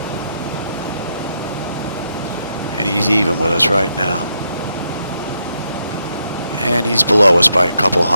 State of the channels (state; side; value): inverted; both; correlation -0.80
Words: And he's even with us right now. And he's below us by a couple